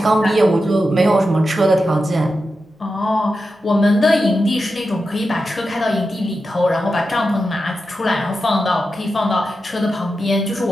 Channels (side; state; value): both; normal; correlation 0.90